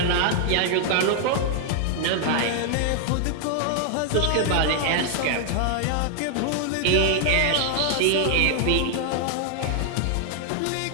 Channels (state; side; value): different; both; correlation 0.00